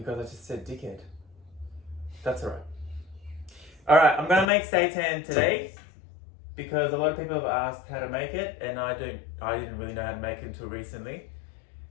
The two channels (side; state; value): right; drops out; at 4.5 s